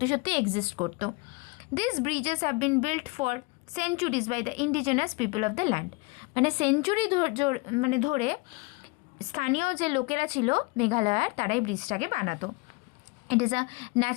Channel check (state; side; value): quieter; right; 26.2 dB